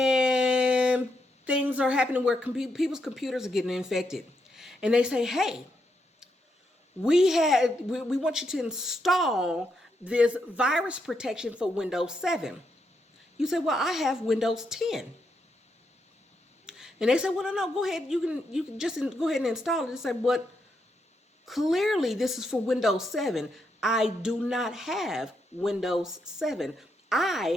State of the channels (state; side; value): normal; both; correlation 0.81